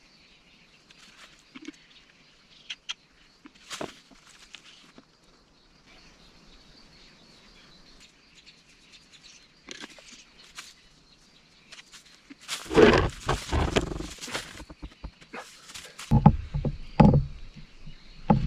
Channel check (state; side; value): identical; both; correlation 1.00